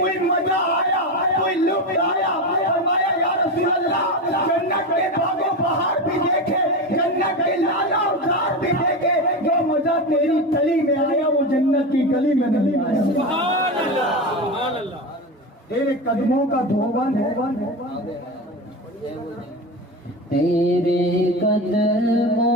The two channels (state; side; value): normal; both; correlation 0.21